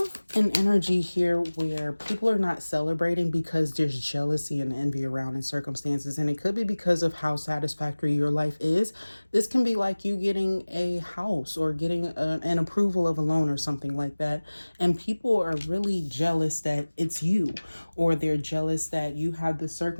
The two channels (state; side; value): inverted; both; correlation -1.00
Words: an energy here where people are not celebrating because there's jealousy and envy around in circumstances. And it could be because of how satisfactory your life is. This can be like you getting a house or getting an approval of a loan or something like that. And people are really jealous that it's you, or they're jealous that you have the